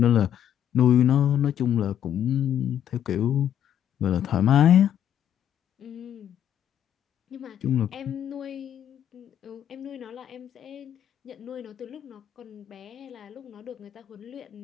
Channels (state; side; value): quieter; right; 10.1 dB